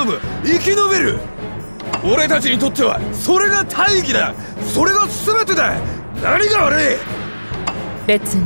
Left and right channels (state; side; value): inverted; both; correlation -1.00